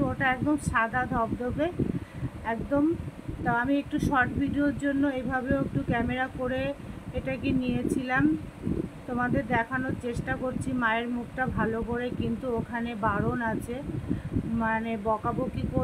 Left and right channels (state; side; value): identical; both; correlation 1.00